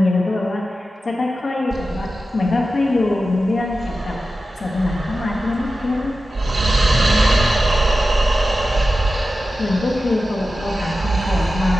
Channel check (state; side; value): normal; both; correlation 0.93